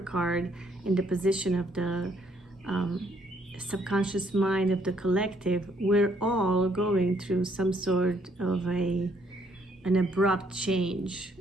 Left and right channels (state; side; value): normal; both; correlation 0.68